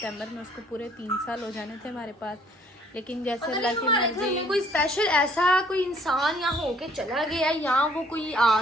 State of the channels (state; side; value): normal; both; correlation 0.60